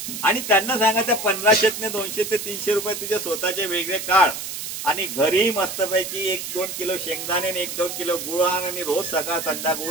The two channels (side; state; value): right; noise; hiss, 7 dB below the sound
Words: आणि त्यांना सांगा त्या 1500 200 ते 300 रुपये तुझे स्वतःचे वेगळे काढ आणि घरी मस्तपैकी 1-2 किलो शेंगदाणे आणि 1-2 किलो गुळ आण आणि रोज सकाळ